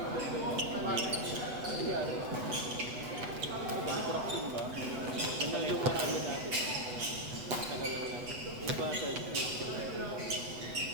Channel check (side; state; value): left; late; 8.1 ms